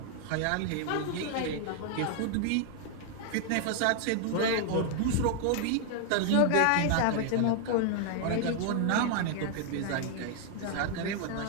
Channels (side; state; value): both; different; correlation 0.00